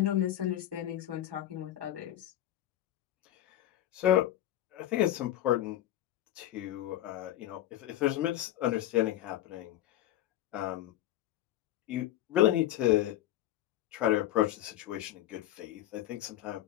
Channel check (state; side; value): quieter; right; 13.1 dB